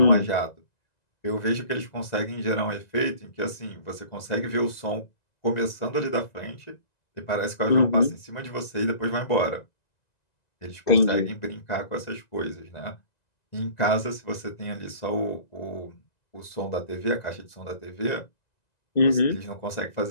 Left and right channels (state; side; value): late; right; 1.9 ms